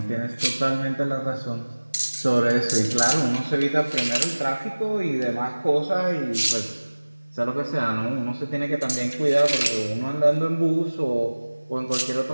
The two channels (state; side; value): inverted; both; correlation -1.00